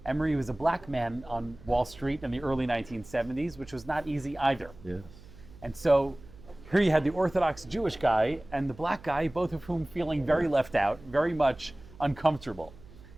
Emery was a black man on Wall Street in the early 1970s, which was not easy either. Yes. And so here you had the Orthodox Jewish guy and the black guy, both of whom feeling very left out, very much uncomfortable.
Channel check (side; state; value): right; noise; hum, 20 dB below the sound